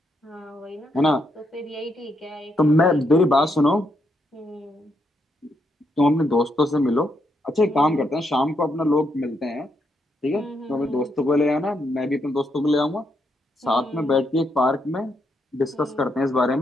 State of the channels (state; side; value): normal; both; correlation 0.79